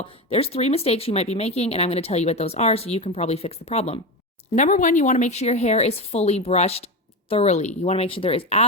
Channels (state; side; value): normal; both; correlation 0.19